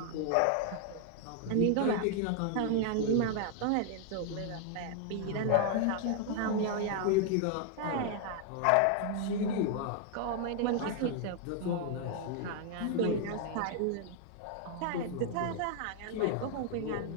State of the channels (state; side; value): different; both; correlation 0.00